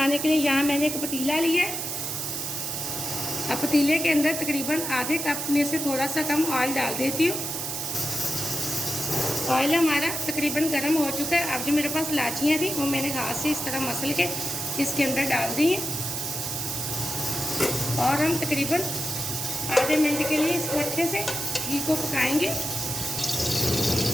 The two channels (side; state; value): right; noise; hiss, 4 dB below the sound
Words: के लिए यहाँ मैंने एक पतीला लिया है। अब पतीले के अंदर तकरीबन आधे कप में से थोड़ा सा कम ऑयल डाल देती हूँ। ऑयल हमारा तकरीबन गर्म हो चुका है। अब जो मेरे पास इलायचियाँ थी वो मैंने हाथ से इस तरह मसल के इसके अंदर डाल दी हैं और हम तकरीबन आधे मिनट के लिए इसको अच्छे से घी को पकाएंगे।